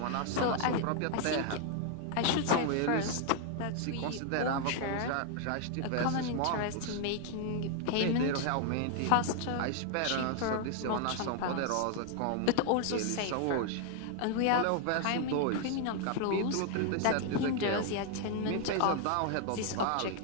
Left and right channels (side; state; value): both; different; correlation 0.00